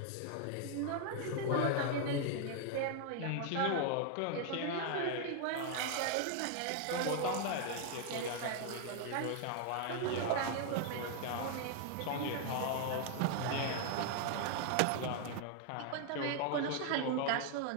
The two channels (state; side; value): different; both; correlation 0.00